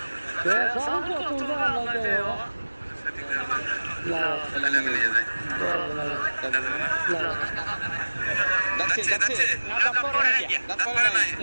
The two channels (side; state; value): both; inverted; correlation -1.00